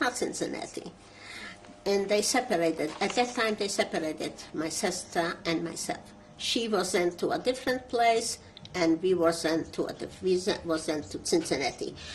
Cincinnati. And they separated. At that time, they separated my sister and myself. She was sent to a different place, and we were sent to Cincinnati,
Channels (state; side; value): identical; both; correlation 1.00